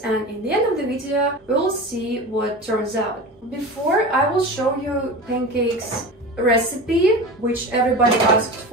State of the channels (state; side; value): normal; both; correlation 0.30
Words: in the end of the video, we will see what turns out. Before, I will show you pancakes recipe, which everybody asked